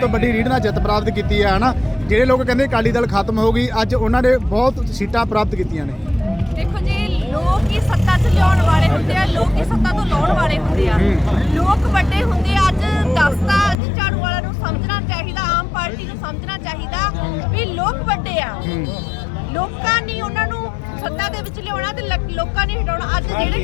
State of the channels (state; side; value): drops out; right; at 13.8 s